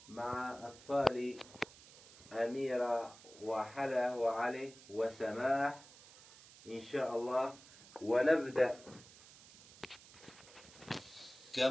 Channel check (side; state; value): right; noise; hiss, 20 dB below the sound